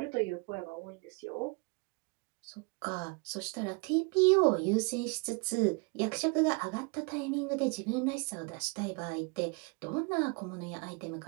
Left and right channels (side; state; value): left; quieter; 31.8 dB